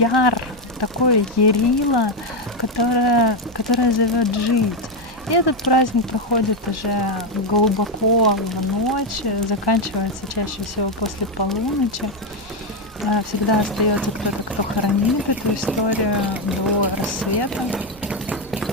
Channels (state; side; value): normal; both; correlation 0.07